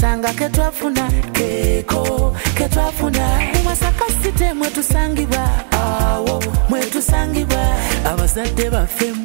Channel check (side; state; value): left; silent; 66 dB below the other